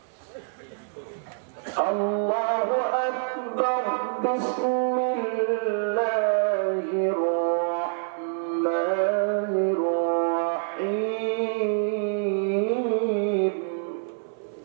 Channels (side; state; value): left; silent; 58 dB below the other